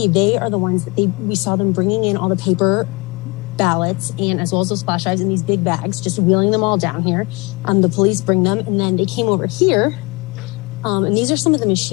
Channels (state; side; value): quieter; right; 26.7 dB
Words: they are the ones that we saw them bringing in all the paper ballots and as well as those flash drives in these big bags, just wheeling them all down here. The police bring them, and then they came over here, and these are some of the